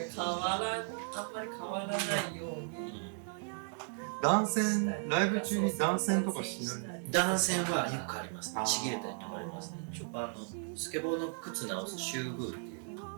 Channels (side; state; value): left; silent; 54 dB below the other